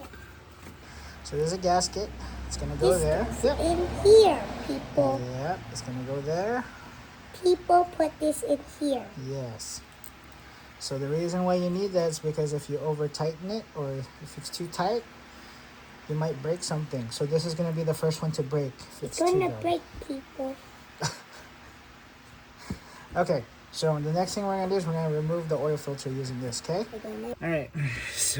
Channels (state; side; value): identical; both; correlation 1.00